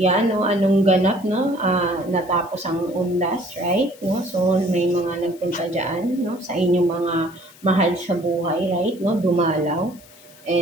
'no, anong ganap, 'no, natapos ang undas, right, 'no. So, may mga nagpunta diyan, 'no, sa inyong mga mahal sa buhay, right, 'no, dumalaw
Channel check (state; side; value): noise; left; hiss, 24 dB below the sound